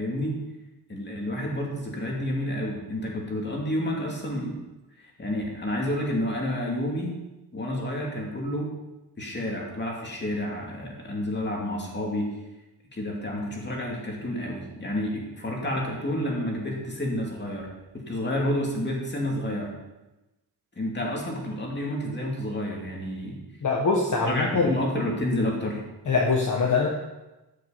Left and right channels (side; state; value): both; normal; correlation 0.33